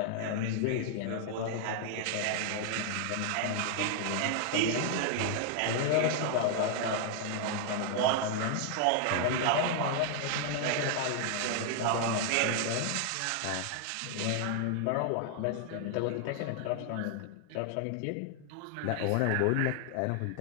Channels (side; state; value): both; different; correlation 0.00